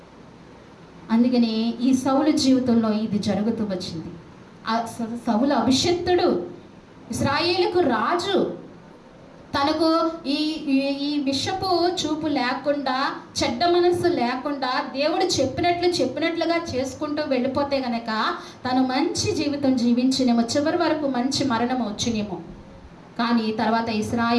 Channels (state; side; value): identical; both; correlation 1.00